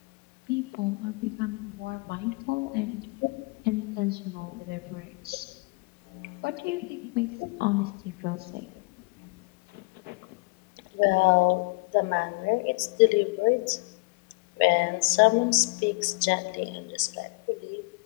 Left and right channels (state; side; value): quieter; right; 27.8 dB